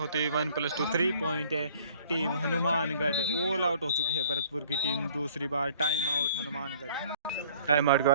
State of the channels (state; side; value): inverted; both; correlation -0.55